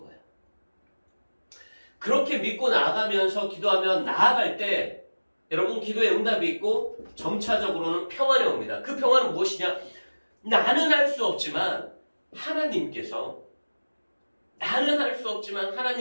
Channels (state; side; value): inverted; both; correlation -1.00